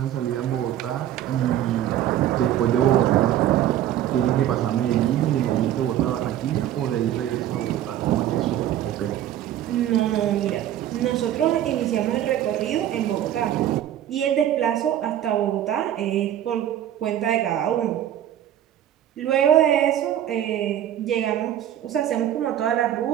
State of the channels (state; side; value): quieter; left; 11.6 dB